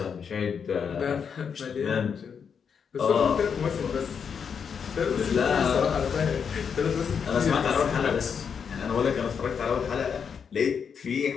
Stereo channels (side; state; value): right; quieter; 6.8 dB